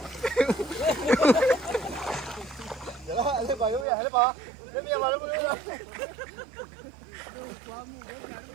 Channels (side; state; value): left; drops out; at 3.9 s